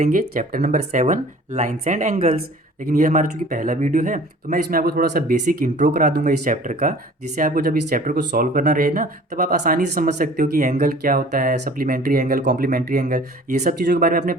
Chapter number 7, lines and angles. लेकिन ये हमारा चूंकि पहला वीडियो है तो मैं इसमें आपको थोड़ा सा बेसिक इंट्रो करा दूंगा इस चैप्टर का, जिससे आपको जब इस चैप्टर को सॉल्व करना रहे ना, तब आप आसानी से समझ सकते हो कि एंगल क्या होता है, सप्लीमेंट्री एंगल, कॉम्प्लीमेंट्री एंगल। ये सब चीज़ों के बारे में आपने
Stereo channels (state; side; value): normal; both; correlation 0.47